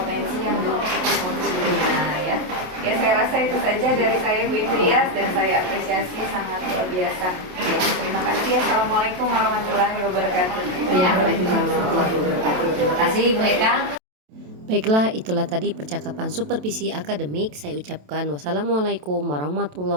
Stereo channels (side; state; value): left; late; 27 ms